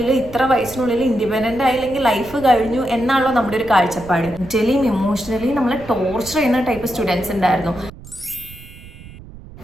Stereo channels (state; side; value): noise; right; rumble, 17 dB below the sound